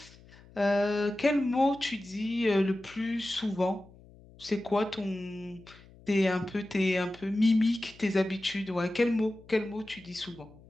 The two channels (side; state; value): left; noise; hum, 23 dB below the sound